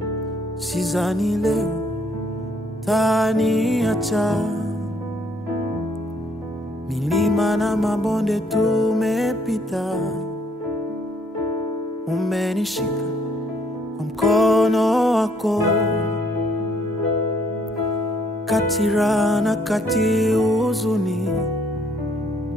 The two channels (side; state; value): both; normal; correlation 0.66